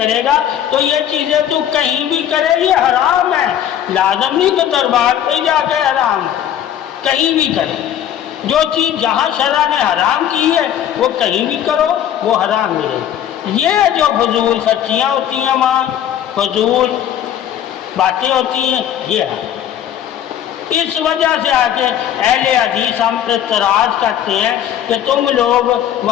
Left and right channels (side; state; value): right; quieter; 10.4 dB